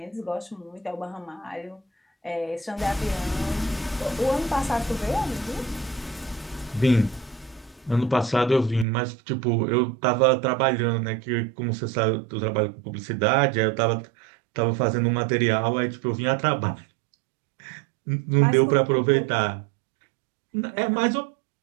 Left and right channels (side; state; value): left; drops out; at 8.8 s